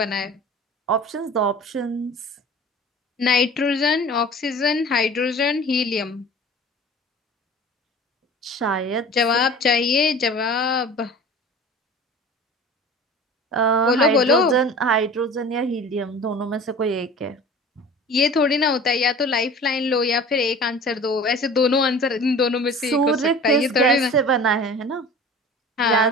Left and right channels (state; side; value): normal; both; correlation 0.41